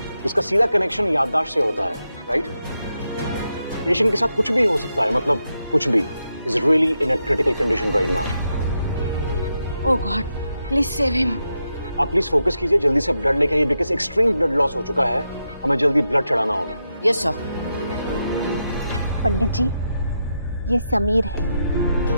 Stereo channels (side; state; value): both; inverted; correlation -0.86